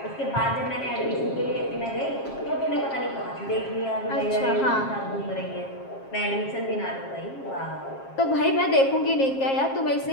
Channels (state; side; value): late; right; 7.4 ms